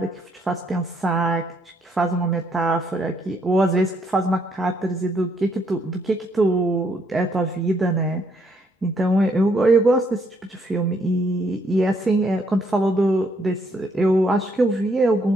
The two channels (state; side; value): normal; both; correlation 0.71